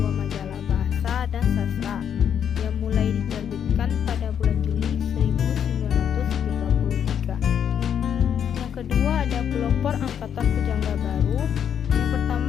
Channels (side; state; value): right; quieter; 8.5 dB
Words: majalah bahasa dan sastra yang mulai diterbitkan pada bulan Juli 1933. Yang kedua ada pelopor Angkatan Pujangga Baru. Yang